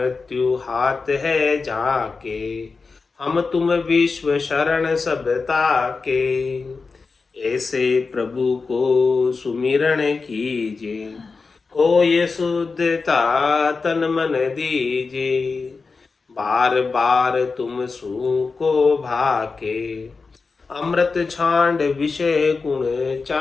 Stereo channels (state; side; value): quieter; right; 4.4 dB